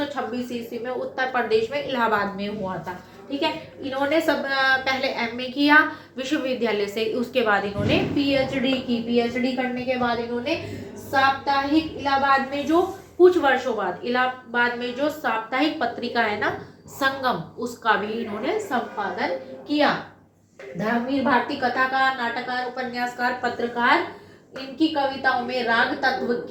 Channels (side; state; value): both; identical; correlation 1.00